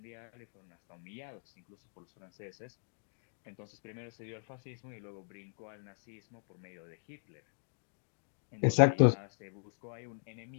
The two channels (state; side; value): silent; right; digital silence